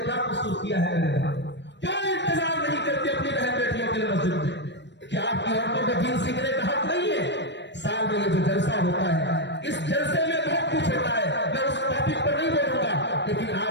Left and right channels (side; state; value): right; late; 0.52 ms